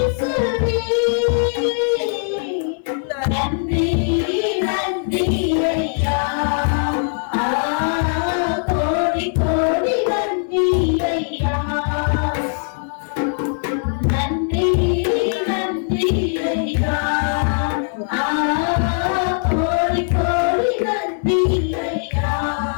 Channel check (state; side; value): silent; right; digital silence